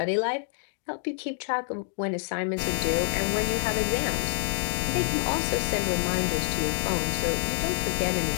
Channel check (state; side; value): silent; right; 60 dB below the other